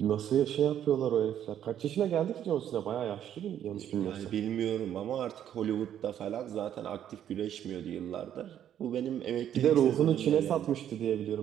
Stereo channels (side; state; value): left; quieter; 10.3 dB